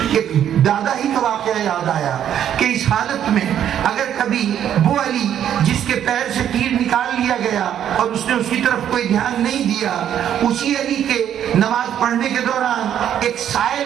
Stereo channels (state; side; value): quieter; left; 10.0 dB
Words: ایک دادا ہی کا واقعہ یاد آیا کہ اس حالت میں اگر کبھی وہ علی جس کے پیر سے تیر نکال لیا گیا اور اس نے اس کی طرف کوئی دھیان نہیں دیا، اسی علی کے نماز پڑھنے کے دوران ایک سائل